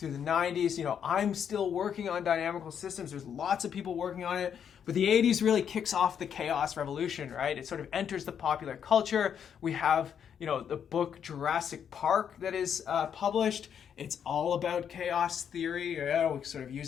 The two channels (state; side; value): quieter; right; 8.2 dB